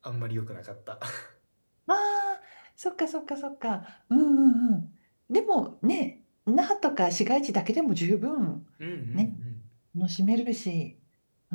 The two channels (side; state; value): both; inverted; correlation -1.00